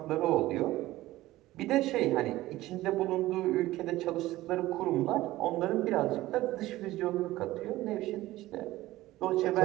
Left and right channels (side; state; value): left; quieter; 16.7 dB